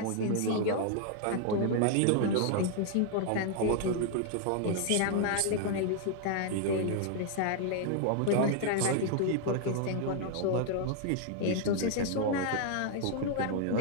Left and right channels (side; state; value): both; different; correlation 0.00